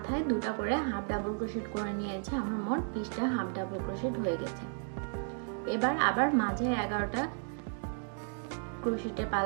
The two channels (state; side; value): silent; left; 55 dB below the other